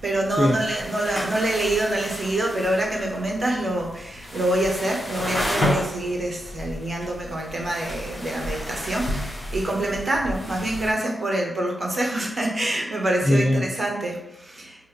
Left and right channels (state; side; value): normal; both; correlation 0.86